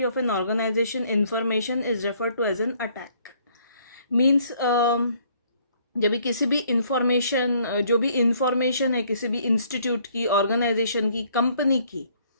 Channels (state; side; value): inverted; both; correlation -0.64